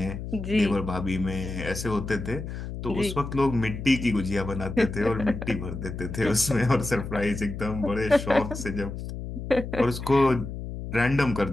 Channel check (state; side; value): noise; left; hum, 7 dB below the sound